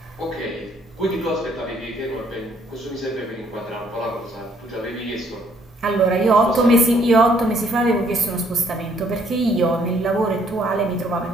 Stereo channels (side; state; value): both; normal; correlation 0.65